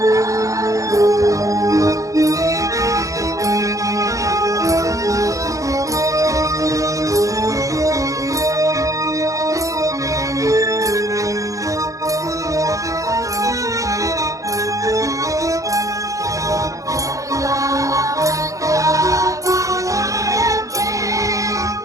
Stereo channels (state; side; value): late; left; 0.16 ms